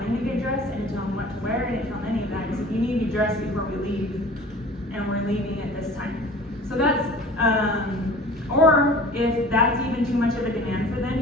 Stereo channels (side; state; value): both; normal; correlation 0.43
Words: to get dressed, I didn't tell him what to wear, I didn't tell him any of that. I said, you need to be dressed before we leave, and we're leaving at this time. So that's, or if that's even too much of a demand for them,